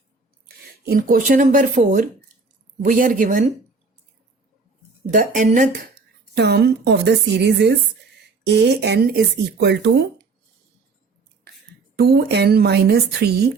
In question number 4 we are given the nth term of the series is an is equal to 2n minus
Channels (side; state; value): left; quieter; 4.2 dB